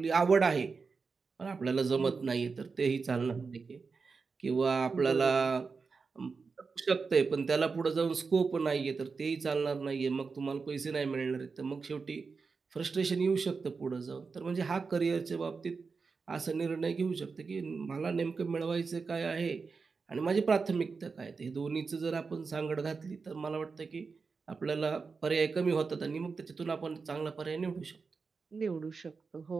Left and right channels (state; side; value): quieter; left; 4.8 dB